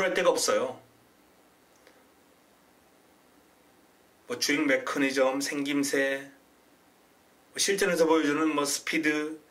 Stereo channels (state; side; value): identical; both; correlation 1.00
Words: 데가 없어요. 뭐 주행 메커니즘, 생김새, 실전에서 보여주는 뭐 스피드,